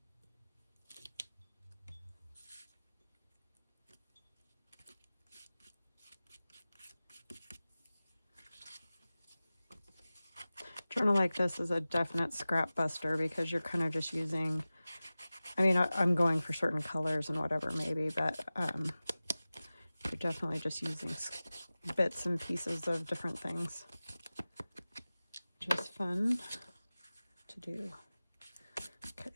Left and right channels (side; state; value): both; inverted; correlation -0.97